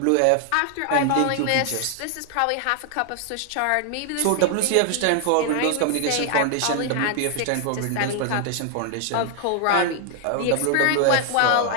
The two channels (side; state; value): both; different; correlation 0.00